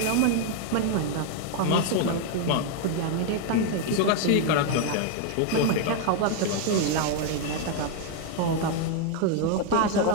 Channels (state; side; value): different; both; correlation 0.01